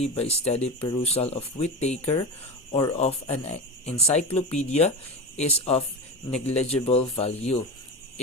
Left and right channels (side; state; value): both; normal; correlation 0.24